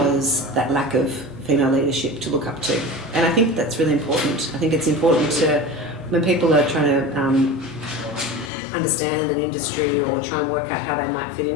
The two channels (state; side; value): drops out; right; at 8.5 s